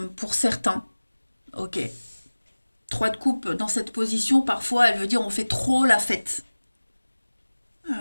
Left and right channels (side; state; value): both; inverted; correlation -1.00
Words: pour certains. Ok. 3 de coupe dans cette position, parfois elle veut dire on fait trop la fête.